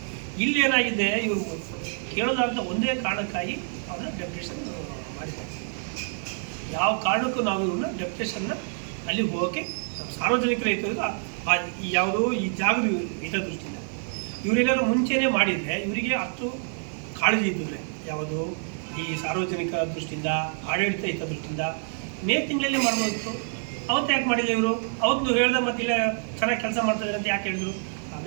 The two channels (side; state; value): left; silent; 60 dB below the other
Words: ಇಲ್ಲೇನಾಗಿದೆ, ಇವರು ಕೇಳೋದಾದಂಥ ಒಂದೇ ಕಾರಣಕ್ಕಾಗಿ ಅವನ್ನ ಡೆಪ್ಟೇಷನ್ ಮಾಡಿದ್ದಾರೆ. ಯಾವ ಕಾರಣಕ್ಕೂ ನಾವು ಇವ್ರನ್ನ ಡೆಪ್ಟೇಷನ್ನ ಅಲ್ಲಿ ಹೋಗೋಕ್ಕೆ ಸಾರ್ವಜನಿಕರ ಯಾವುದು ಈ ಜಾಗದ ಹಿತದೃಷ್ಟಿಯಿಂದ ಇವರೇನಾದ್ರು ಮುಂಚೆನೇ ಮಾಡಿದರೆ ಇವರಿಗೆ ಅಷ್ಟು ಕಾಳಜಿ ಇದ್ದಿದ್ರೆ ಯಾವುದು ಈ ಸಾರ್ವಜನಿಕ ದೃಷ್ಟಿಯಿಂದ, ಆಡಳಿತ ಹಿತದೃಷ್ಟಿಯಿಂದ ಮೇ ತಿಂಗಳಲ್ಲಿ ಮಾಡ್ಬೋದಿತ್ತು. ಅವತ್ತು ಯಾಕೆ ಮಾಡಿಲ್ಲ ಇವರು? ಅವತ್ತು ಹೇಳ್ದೆ ಮತ್ತೆ ಇಲ್ಲ ಚೆನ್ನಾಗಿ ಕೆಲಸ ಮಾಡ್ತಾಯಿದ್ದಾರೆ ಅಂತ ಯಾಕೆ ಹೇಳಿದ್ರು?